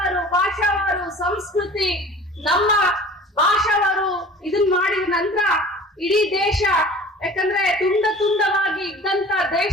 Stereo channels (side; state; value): both; normal; correlation 0.43